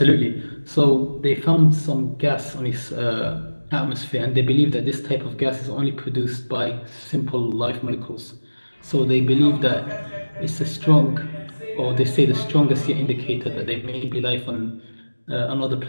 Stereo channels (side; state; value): both; inverted; correlation -1.00